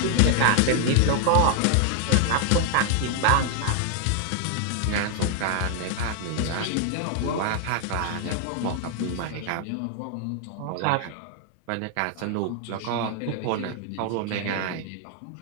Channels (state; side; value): different; both; correlation 0.00